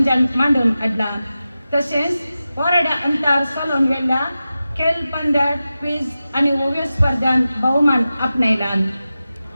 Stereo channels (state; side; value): inverted; both; correlation -0.94